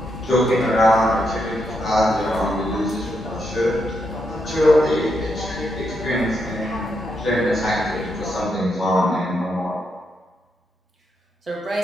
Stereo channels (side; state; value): both; normal; correlation 0.81